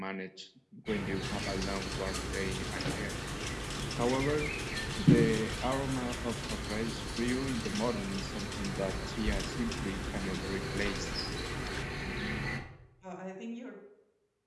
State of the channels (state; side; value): identical; both; correlation 1.00